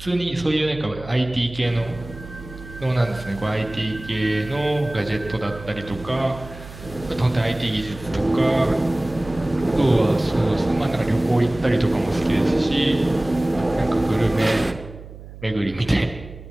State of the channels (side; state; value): right; noise; hum, 15 dB below the sound